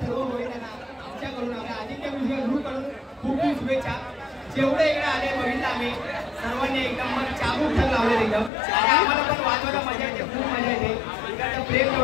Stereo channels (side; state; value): right; drops out; at 8.5 s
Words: सर्व महिलांना आमच्याकडून आपल्या आदित्य म्युझिक ग्रुपकडून खूप खूप शुभेच्छा. जेवढे इकडे आले बघितलं आम्ही सर्वांनी एकदम मग चाबूक ठर लावले एकदम. आणि आम्हाला पण वाजवायला मजा येते, खूप मजा येते. इकडचं प्रेम